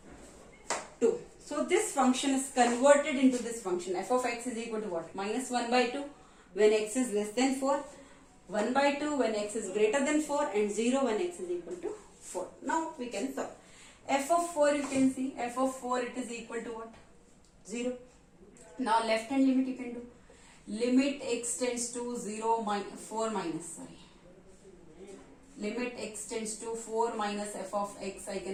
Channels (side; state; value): both; identical; correlation 1.00